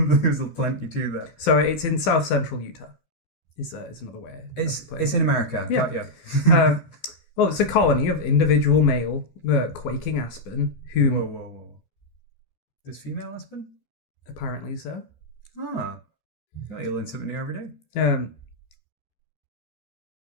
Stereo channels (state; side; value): late; right; 13 ms